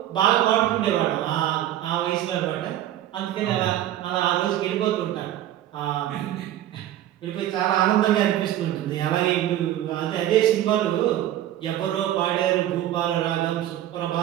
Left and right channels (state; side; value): quieter; left; 12.7 dB